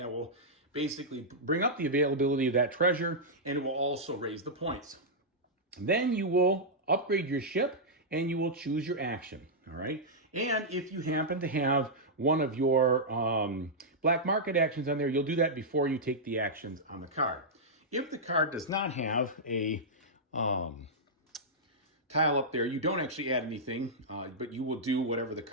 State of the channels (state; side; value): normal; both; correlation -0.09